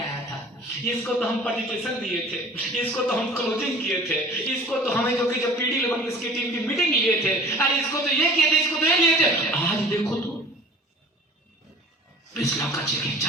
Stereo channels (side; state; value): both; normal; correlation 0.44